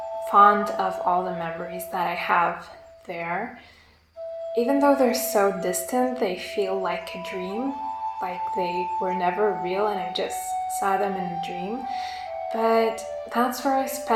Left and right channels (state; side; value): identical; both; correlation 1.00